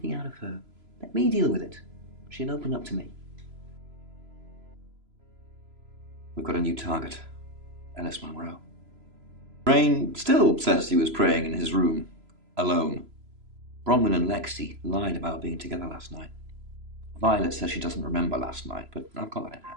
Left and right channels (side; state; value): left; late; 3.0 ms